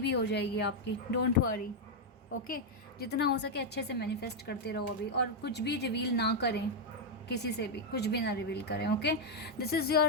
हो जाएगी आपकी, डोंट वरी। ओके, जितना हो सके अच्छे से मैनिफेस्ट करते रहो अभी, और कुछ भी रिवील ना करें, किसी से भी कुछ भी ना रिवील करें। Okay, this is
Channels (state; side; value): normal; both; correlation 0.00